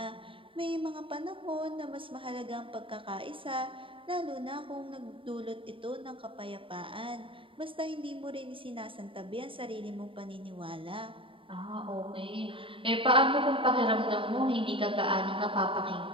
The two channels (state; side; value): late; left; 0.25 ms